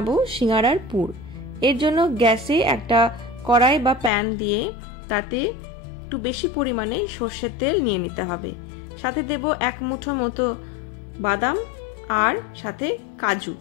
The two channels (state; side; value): drops out; right; at 4.1 s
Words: সিঙ্গারার পুর। এর জন্য গ্যাসে একটা কড়াই বা প্যান দিয়ে তাতে একটু বেশি পরিমাণে সর্ষের তেল নিয়ে নিতে হবে। সাথে দেব 1 মুঠো মতো বাদাম, আর সাথে